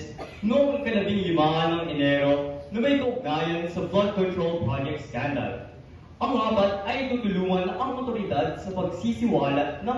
noong 15 ng Enero na may kaugnayan sa flood control project scandal. Ang apat ay tutulungan ang otoridad sa pagsisiwalat ng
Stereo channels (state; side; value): identical; both; correlation 1.00